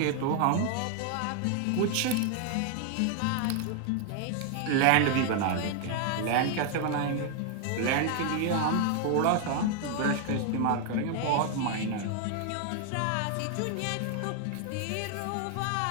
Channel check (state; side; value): different; both; correlation 0.00